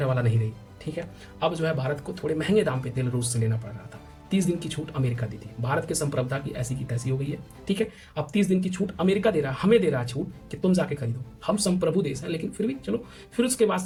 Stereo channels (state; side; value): identical; both; correlation 1.00